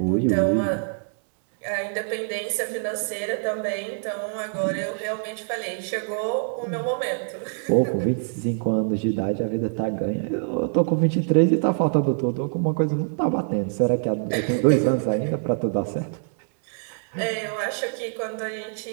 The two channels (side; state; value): left; silent; digital silence